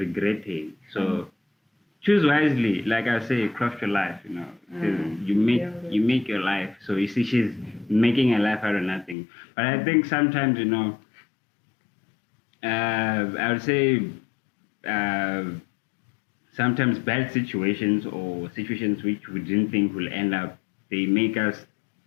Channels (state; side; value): drops out; right; at 9.2 s